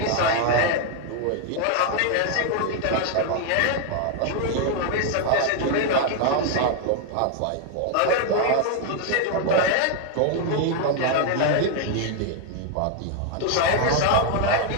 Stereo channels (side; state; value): both; different; correlation 0.00